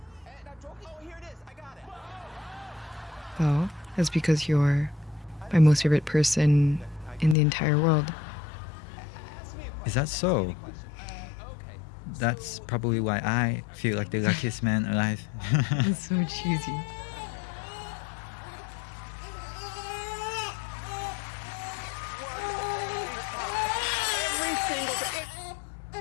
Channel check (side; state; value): right; drops out; at 7.4 s